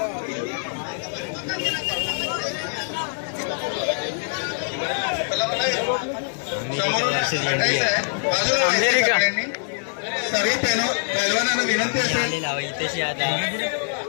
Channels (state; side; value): silent; right; digital silence